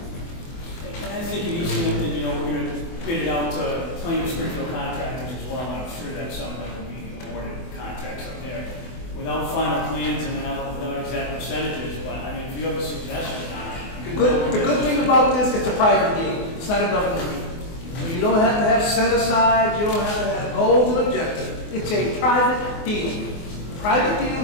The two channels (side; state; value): right; late; 24 ms